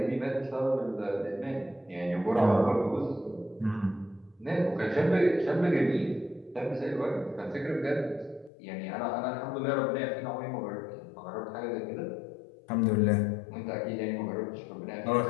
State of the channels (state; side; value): drops out; right; at 8.5 s